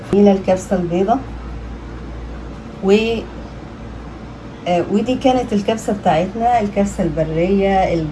هنا الكبسه البيضه ودي كانت الكبسة بتاعتنا، الكبسة البرية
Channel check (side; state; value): both; identical; correlation 1.00